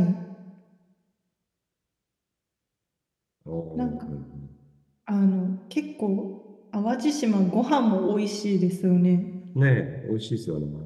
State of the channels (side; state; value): both; identical; correlation 1.00